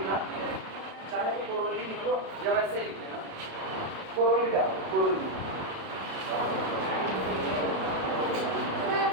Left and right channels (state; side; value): late; left; 32 ms